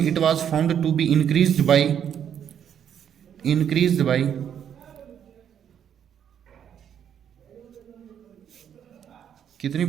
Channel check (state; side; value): quieter; left; 8.9 dB